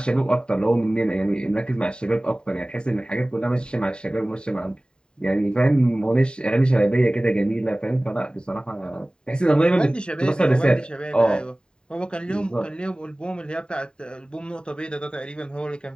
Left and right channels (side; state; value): right; late; 0.049 ms